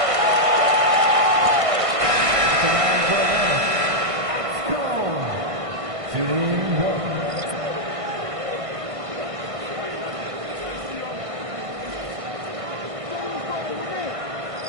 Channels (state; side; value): late; left; 1.5 ms